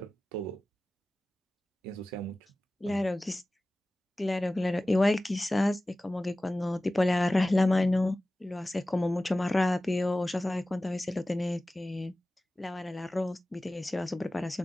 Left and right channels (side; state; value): both; normal; correlation 0.96